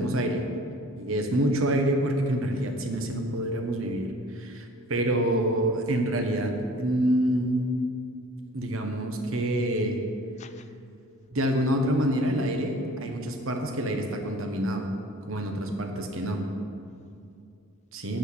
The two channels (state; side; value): normal; both; correlation 0.49